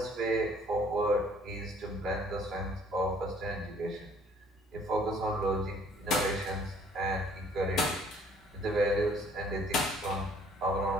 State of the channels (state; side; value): normal; both; correlation 0.59